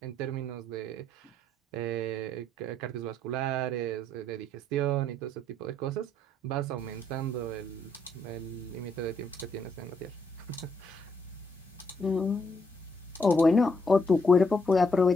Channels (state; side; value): normal; both; correlation 0.74